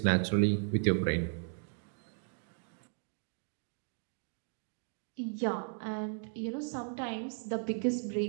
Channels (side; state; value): left; silent; 54 dB below the other